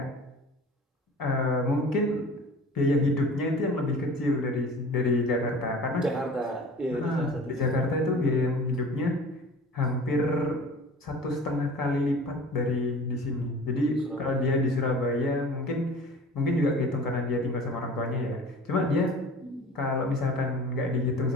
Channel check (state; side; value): normal; both; correlation 0.41